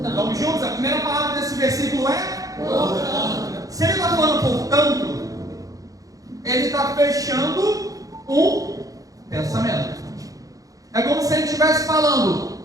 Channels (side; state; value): left; late; 0.17 ms